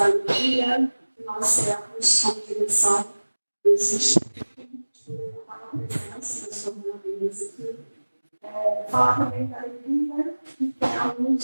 alegria que nós temos como direção desse instituto, a presença das coordenadoras aqui. Falar também da alegria que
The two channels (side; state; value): both; inverted; correlation -1.00